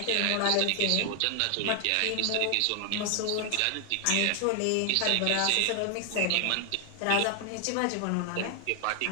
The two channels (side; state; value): both; different; correlation 0.00